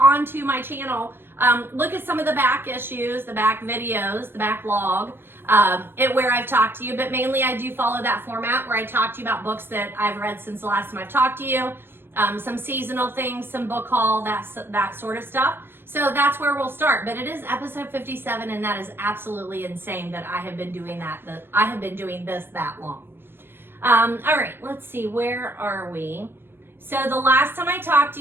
my channel, look at some of the back issues, the back videos, the backlog, where I've talked to you, but mainly I do follow that format where I talk to you about books that I've read since the last time I've talked to you, some seasonal things, some book haul, that sort of stuff. So that's where we'll start, but it is episode 57 and that is absolutely insane that I have been doing I have been doing this that long. All right, let's see, where are we? So the last time I talked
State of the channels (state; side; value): late; left; 0.10 ms